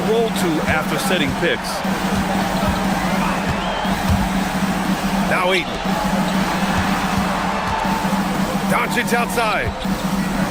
roll to after setting picks. Now Eaton. Doncic outside.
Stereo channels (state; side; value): identical; both; correlation 1.00